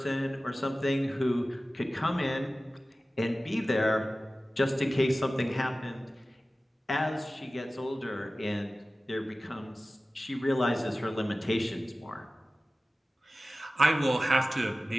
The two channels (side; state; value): both; normal; correlation 0.96